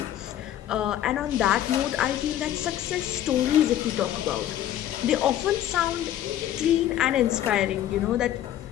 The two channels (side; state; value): right; quieter; 12.0 dB